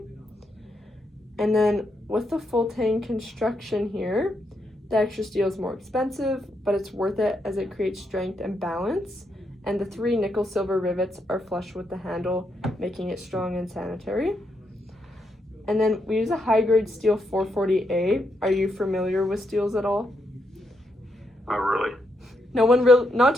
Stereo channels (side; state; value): both; normal; correlation 0.80